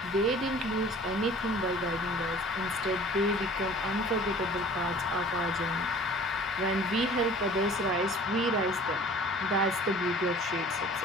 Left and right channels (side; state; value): both; normal; correlation 0.47